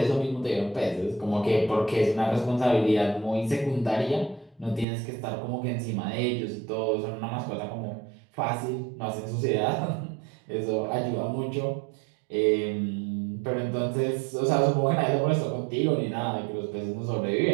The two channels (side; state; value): left; drops out; at 4.9 s